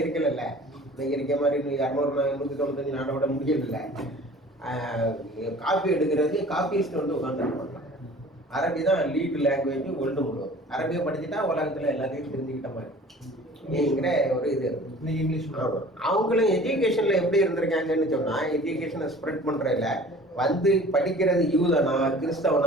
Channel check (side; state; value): both; normal; correlation 0.46